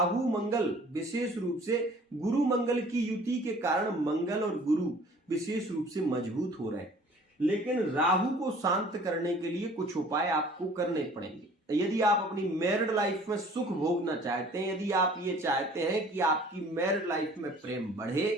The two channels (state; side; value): normal; both; correlation 0.51